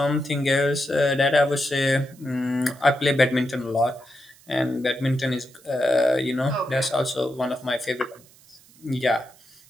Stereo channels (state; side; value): noise; right; hiss, 26 dB below the sound